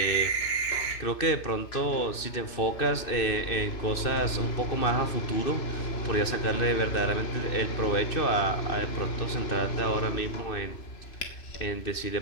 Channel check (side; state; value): right; late; 2.6 ms